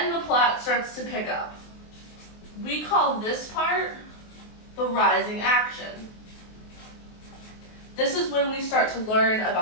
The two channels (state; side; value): late; right; 23 ms